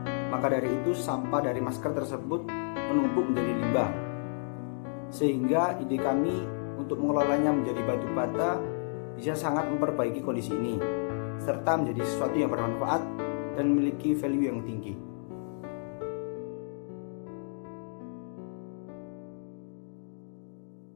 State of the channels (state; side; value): silent; right; digital silence